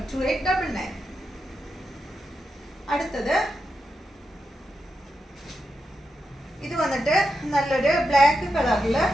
അടുത്തത് ഇത് വന്നിട്ട് നല്ലൊരു ബ്ലാക്ക്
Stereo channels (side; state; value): both; normal; correlation 0.87